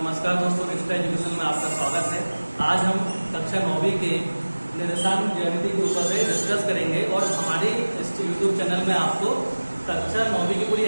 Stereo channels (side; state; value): both; inverted; correlation -1.00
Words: दोस्तों, रिश्ता एजुकेशन में आपका स्वागत है। आज हम कक्षा 9वीं के निर्देशांक ज्यामिति के ऊपर से डिस्कस करेंगे और हमारे इस यूट्यूब चैनल में आपको कक्षा 9वीं की पूरी